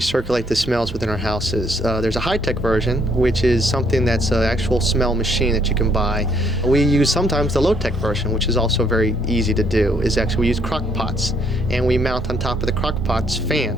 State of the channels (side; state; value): both; normal; correlation 0.69